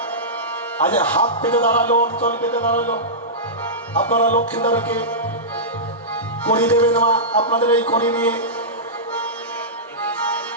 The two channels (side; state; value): both; normal; correlation -0.16